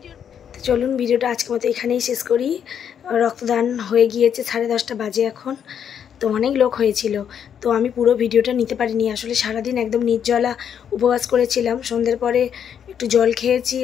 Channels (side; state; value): right; quieter; 8.4 dB